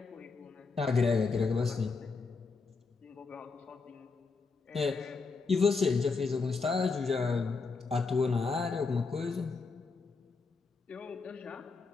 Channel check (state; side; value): quieter; right; 4.4 dB